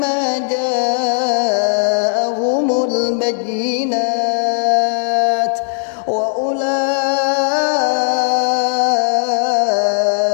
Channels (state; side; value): silent; right; digital silence